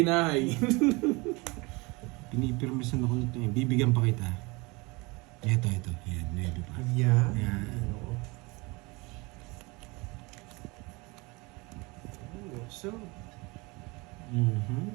Pinipirmisan ako nito. Bibigyan pa kita. Ito. Yan, 9 pa. Yeah. Yan. So,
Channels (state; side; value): quieter; left; 25.7 dB